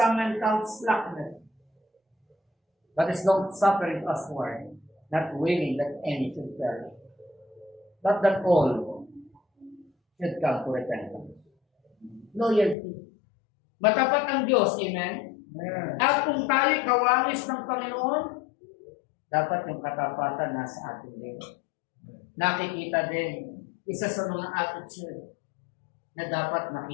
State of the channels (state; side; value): drops out; right; at 12.8 s